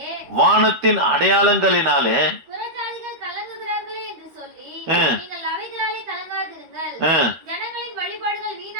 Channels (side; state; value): left; late; 13 ms